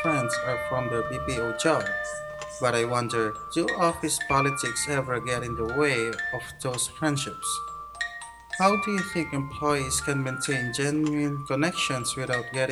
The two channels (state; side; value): identical; both; correlation 1.00